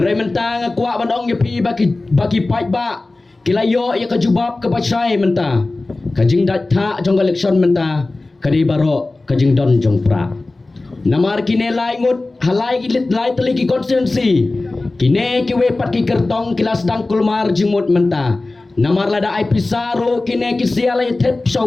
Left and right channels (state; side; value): quieter; right; 3.2 dB